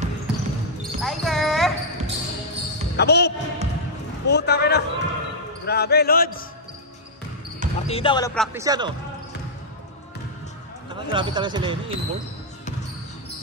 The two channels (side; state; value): both; normal; correlation -0.07